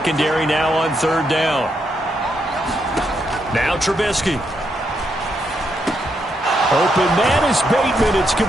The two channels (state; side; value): normal; both; correlation 0.79